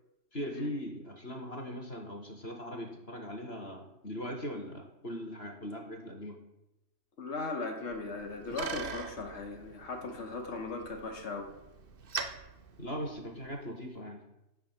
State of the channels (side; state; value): right; late; 2.6 ms